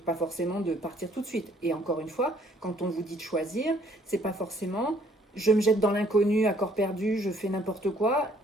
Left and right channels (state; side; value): normal; both; correlation 0.62